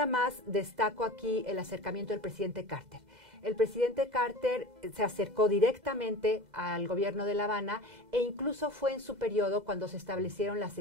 más destaco aquí el acercamiento del presidente Carter. El presidente Carter se acercó directamente al gobierno de La Habana e incluso fue en su periodo cuando se establecieron las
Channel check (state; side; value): late; left; 2.0 ms